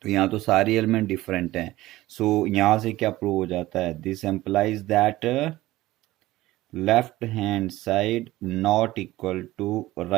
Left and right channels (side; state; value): left; quieter; 17.1 dB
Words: तो यहाँ तो सारी एलिमेंट डिफरेंट हैं। सो यहाँ से क्या प्रूव हो जाता है, this implies that left hand side not equal to